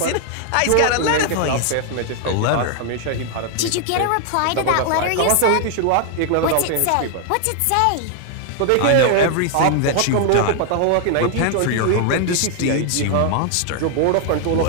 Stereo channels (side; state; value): both; different; correlation 0.00